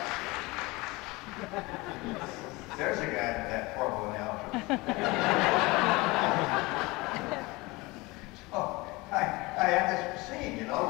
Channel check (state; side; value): quieter; right; 23.2 dB